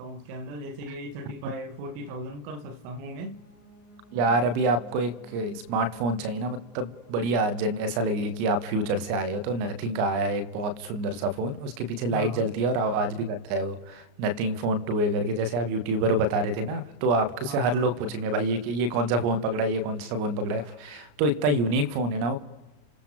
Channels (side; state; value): left; late; 34 ms